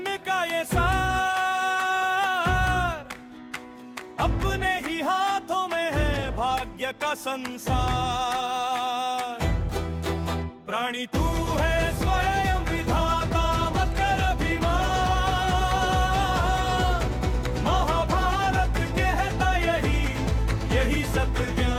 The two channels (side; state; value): both; identical; correlation 1.00